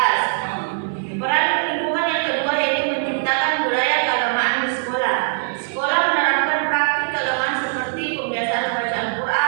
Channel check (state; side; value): silent; left; 63 dB below the other